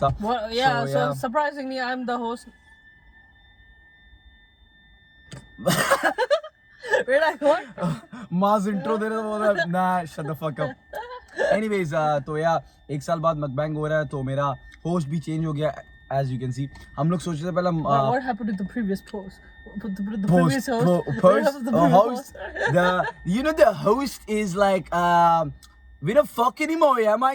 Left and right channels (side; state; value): both; identical; correlation 1.00